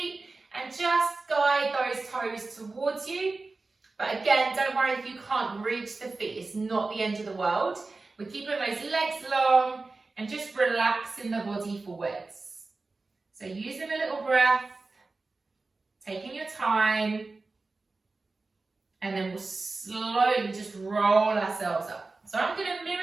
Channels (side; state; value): left; quieter; 3.6 dB